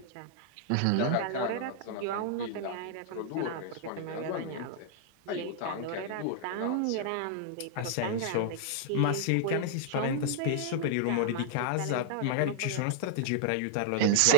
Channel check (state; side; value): different; both; correlation -0.01